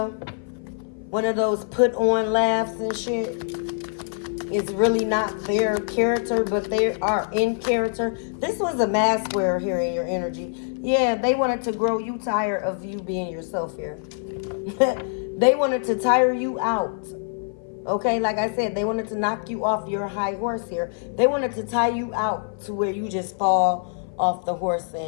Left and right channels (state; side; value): silent; right; 55 dB below the other